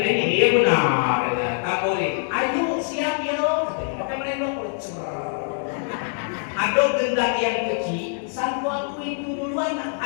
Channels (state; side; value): silent; right; 58 dB below the other